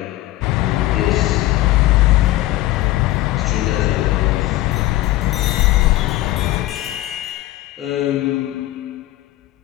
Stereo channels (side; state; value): right; quieter; 16.4 dB